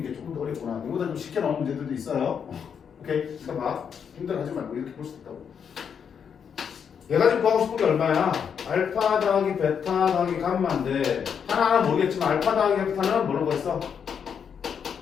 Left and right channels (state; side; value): quieter; right; 7.3 dB